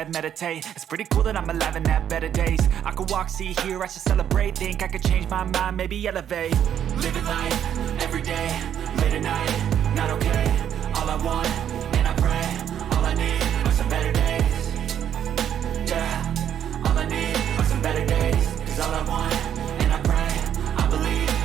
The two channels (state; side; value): quieter; left; 9.7 dB